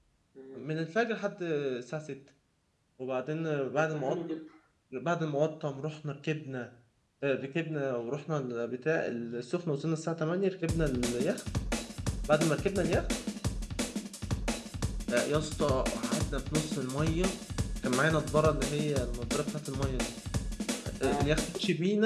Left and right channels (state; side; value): identical; both; correlation 1.00